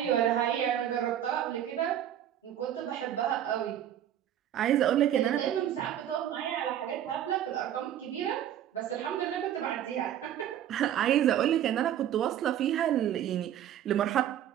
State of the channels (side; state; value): left; quieter; 10.8 dB